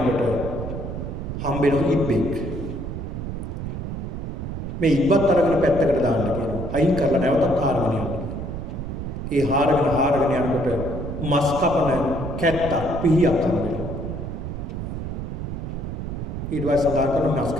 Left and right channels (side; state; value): right; noise; rumble, 5 dB below the sound